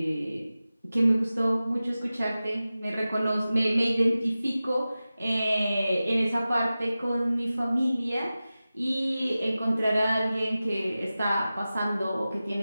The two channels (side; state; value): both; inverted; correlation -0.95